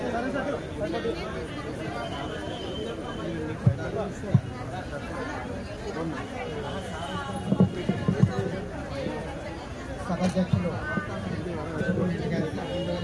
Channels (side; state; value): both; identical; correlation 1.00